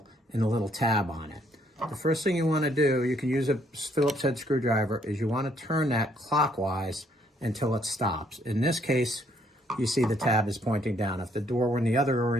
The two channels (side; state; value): both; normal; correlation 0.68